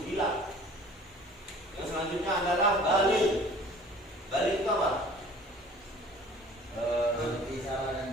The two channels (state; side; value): normal; both; correlation 0.48